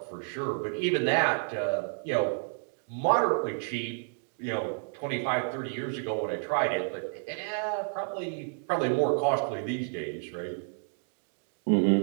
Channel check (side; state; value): left; silent; 58 dB below the other